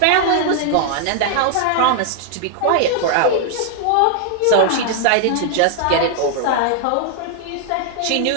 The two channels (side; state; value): both; different; correlation 0.00